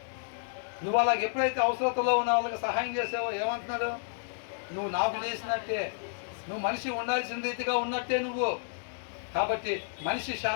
నువ్వు అలాగ ఎప్పుడైతే అవసరతలో ఉన్న వాళ్ళకి సహాయం చేసావో ఏమంటున్నాడు? నువ్వు నాకు చేసినట్టే, నువ్వు మనిషి ఉండాల్సిన రీతిగా ఉన్నట్టే నువ్వు. కాబట్టి మనిషి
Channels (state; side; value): silent; right; digital silence